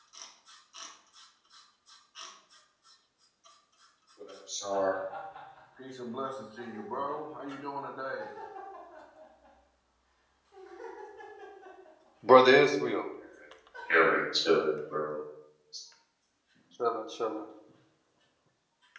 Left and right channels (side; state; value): both; identical; correlation 1.00